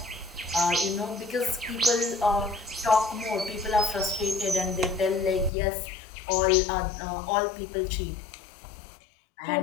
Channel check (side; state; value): right; drops out; at 5.5 s